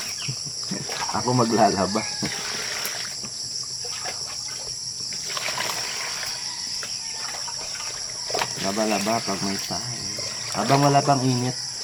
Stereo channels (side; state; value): both; identical; correlation 1.00